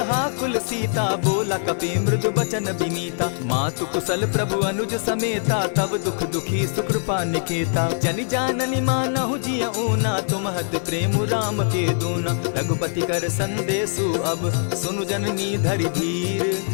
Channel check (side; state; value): right; silent; 58 dB below the other